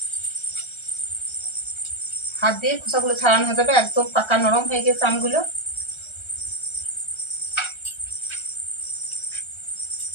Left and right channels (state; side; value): late; right; 1.3 ms